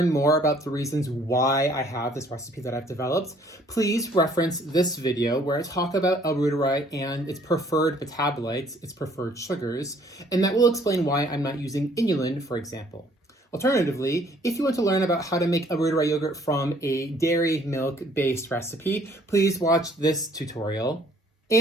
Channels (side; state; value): both; normal; correlation 0.60